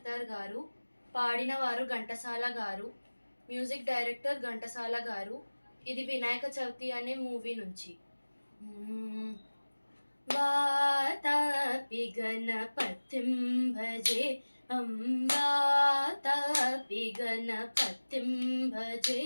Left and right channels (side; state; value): both; inverted; correlation -1.00